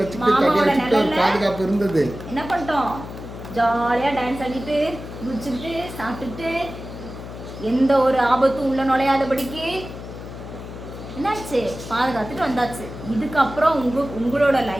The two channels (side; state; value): left; noise; hum, 11 dB below the sound